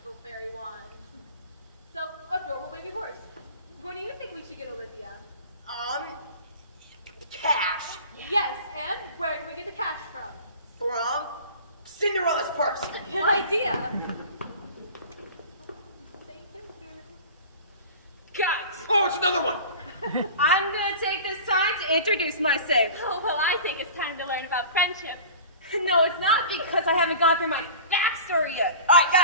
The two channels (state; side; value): inverted; both; correlation -0.38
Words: fairy wand. So, adorable baby horse. What do you think we should get Olivia? Cash. Yes, and where can we get the cash from? From Cinderella's purse. Good idea. Guys, Oh, it's another one! I'm gonna take this time to introduce myself. Oh, well, I think it's time to learn about friendship. No, it's not because I haven't gone through my backstory yet. All right,